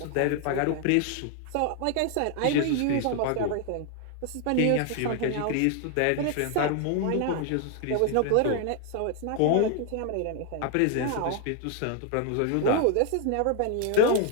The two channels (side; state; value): both; different; correlation 0.00